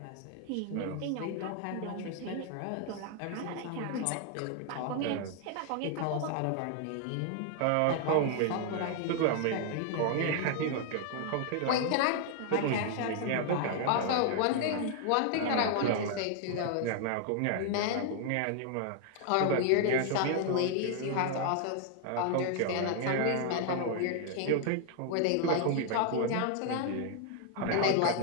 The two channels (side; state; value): both; different; correlation 0.00